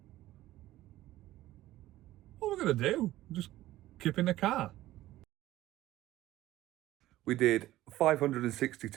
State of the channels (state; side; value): quieter; left; 15.6 dB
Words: What are we going to do? Just keep in the car. We did